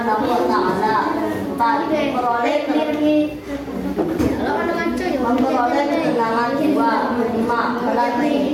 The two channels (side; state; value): both; identical; correlation 1.00